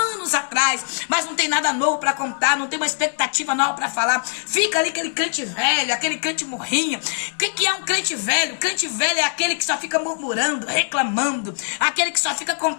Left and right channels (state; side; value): silent; right; 64 dB below the other